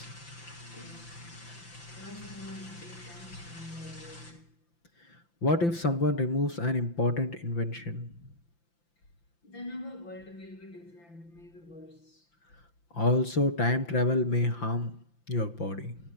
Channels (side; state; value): right; late; 5.9 ms